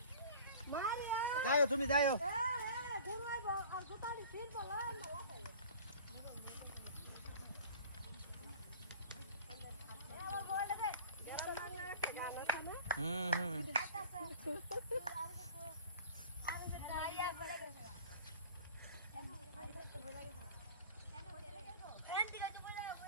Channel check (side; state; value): both; inverted; correlation -0.44